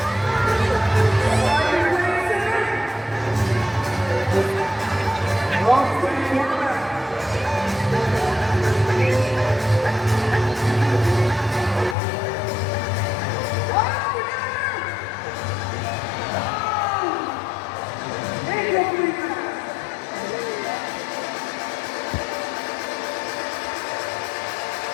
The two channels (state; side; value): drops out; right; at 12.0 s